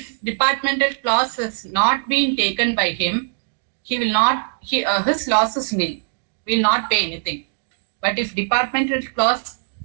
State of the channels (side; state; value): left; silent; digital silence